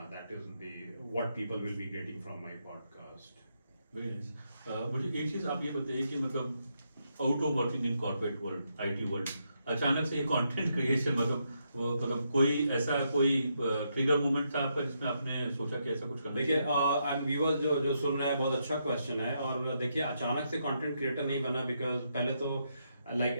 That is the what people will be getting from my podcast. Very nice. मुझे एक चीज आप ये बताइए कि मतलब out of working in corporate world, IT world, अचानक से ये कंटेंट क्रिएशन, मतलब कोई ट्रिगर मोमेंट था आपका जिसमें आपने सोचा कि ऐसा कुछ करना? देखिए, एंड व्यूअर्स जो सुन रहे हैं, बहुत अच्छा क्वेश्चन है। और देखिए, अचानक से कंटेंट क्रिएटर नहीं बना, बिकॉज पहले तो लाइक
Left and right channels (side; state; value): both; inverted; correlation -0.80